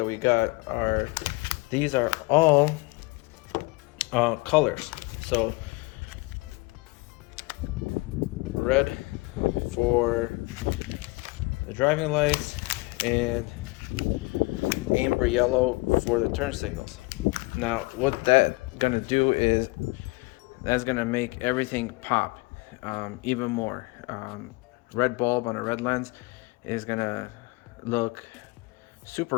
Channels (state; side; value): quieter; right; 25.0 dB